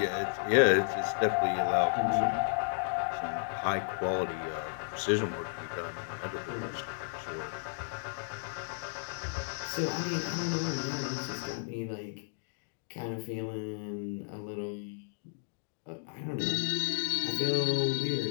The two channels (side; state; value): right; silent; digital silence